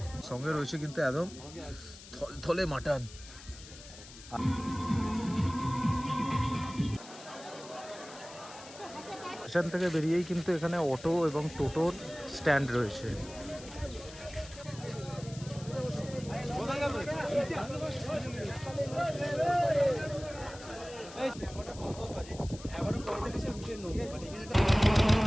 সঙ্গে রয়েছে কিন্তু একদম থলে মাটন। স্টেশন থেকে বেরিয়েই কিন্তু এখানে অটো এবং টোটোর স্ট্যান্ড রয়েছে।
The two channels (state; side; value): noise; left; hiss, 17 dB below the sound